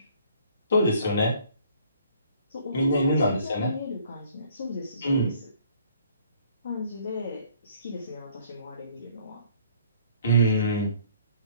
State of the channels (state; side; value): inverted; both; correlation -0.58